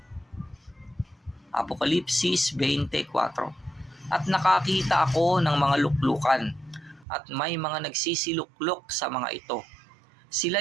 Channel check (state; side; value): drops out; left; at 7.1 s